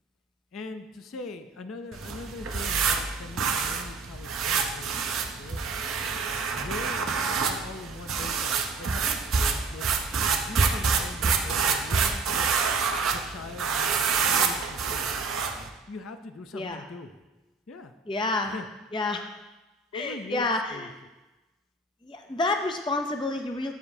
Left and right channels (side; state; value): left; quieter; 3.4 dB